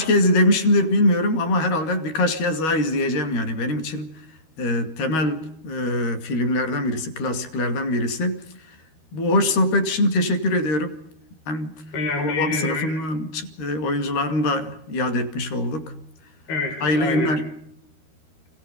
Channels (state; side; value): late; right; 13 ms